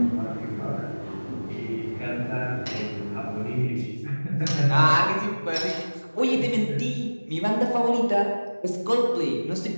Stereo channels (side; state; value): both; inverted; correlation -1.00